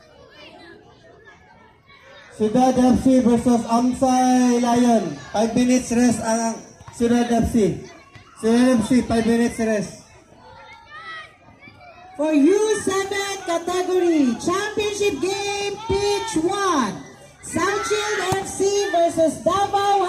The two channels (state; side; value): identical; both; correlation 1.00